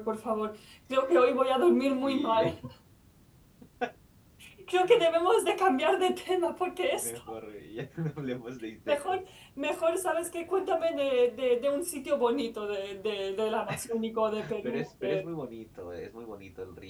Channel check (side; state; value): both; identical; correlation 1.00